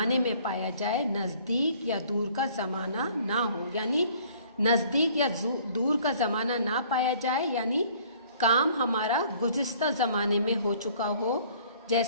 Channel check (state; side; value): inverted; both; correlation -0.56